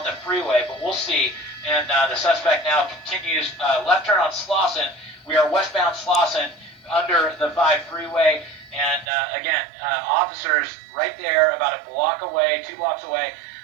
the freeway, but we'll see. And the suspect now continues left turn on Slauson. We are westbound Slauson under the 5 freeway. And again, officers right there about a block away, 2 blocks away.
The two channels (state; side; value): drops out; left; at 9.1 s